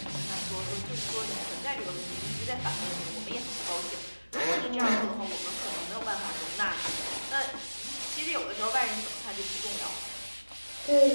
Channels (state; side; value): inverted; both; correlation -1.00